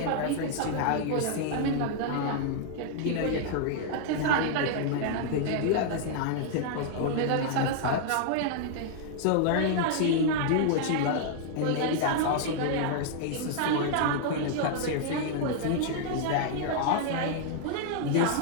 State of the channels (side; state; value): both; different; correlation -0.01